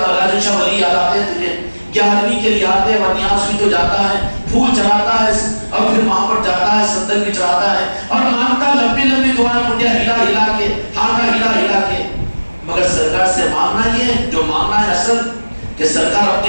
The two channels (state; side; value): inverted; both; correlation -1.00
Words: شاہ ولی یاد آتے ہیں تجھے، 11ویں کے لیے آتے ہیں، ورنیاس بھی تو جاتا ہے، پھول چڑھاتا ہے اور پھر وہاں پر جاتا ہے، صندل بھی چڑھاتا ہے اور مانگتا لمبی لمبی دعائیں، منڈیا ہلا ہلا کے، ہاتھا ہلا ہلا کے. مگر سرکار سے مانگنا یہ جو مانگنا ہے اصل کہ سرکار